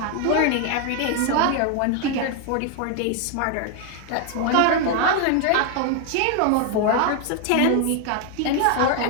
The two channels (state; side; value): different; both; correlation 0.01